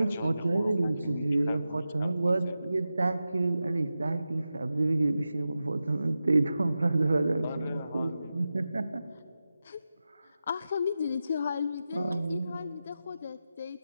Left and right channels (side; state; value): both; inverted; correlation -0.92